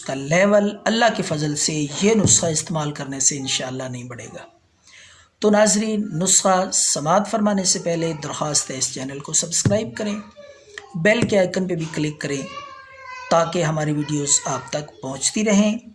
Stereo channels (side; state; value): both; identical; correlation 1.00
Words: کا لیول اللہ کے فضل سے یہ نسخہ استعمال کرنے سے انشاءاللہ نہیں بڑھے گا۔ تو ناظرین، نسخہ سماعت فرمانے سے پہلے درخواست ہے اس چینل کو سبسکرائب کریں، بیل کے آئیکن پہ بھی کلک کریں تاکہ ہماری ویڈیوز آپ تک پہنچتی رہیں،